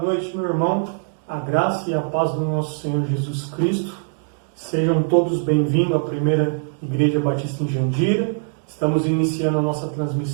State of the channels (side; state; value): left; silent; 64 dB below the other